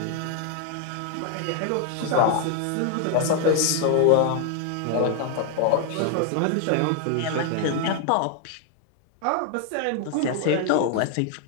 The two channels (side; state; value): both; different; correlation 0.00